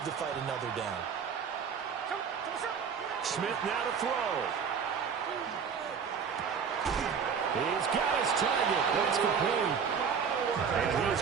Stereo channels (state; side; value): quieter; left; 6.6 dB